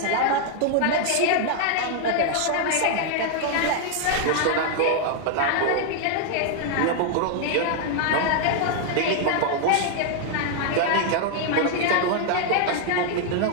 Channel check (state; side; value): different; both; correlation 0.00